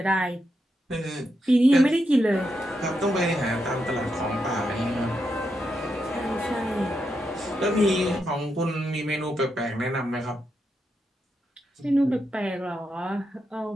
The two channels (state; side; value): normal; both; correlation 0.84